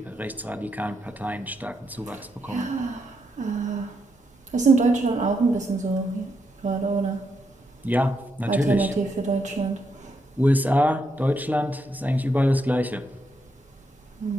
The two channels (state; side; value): normal; both; correlation 0.80